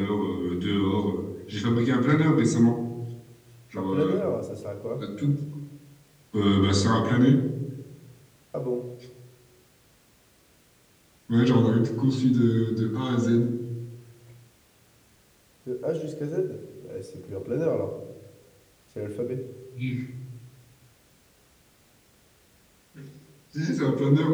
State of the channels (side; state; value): both; identical; correlation 1.00